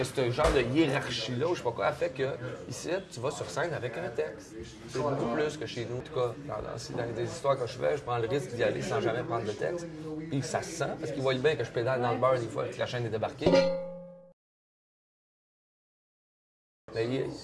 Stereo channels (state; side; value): identical; both; correlation 1.00